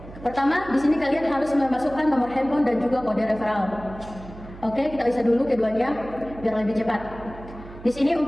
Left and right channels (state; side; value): noise; right; hum, 16 dB below the sound